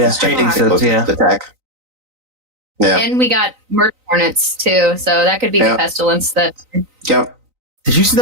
gigantic locust attack. Yeah, and we got murder hornets too, so that could be the pestilence that. Yep. Did you see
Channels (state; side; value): late; left; 3.9 ms